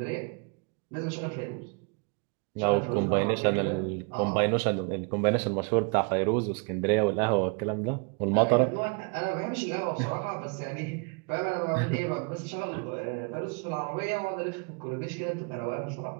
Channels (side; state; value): left; quieter; 35.5 dB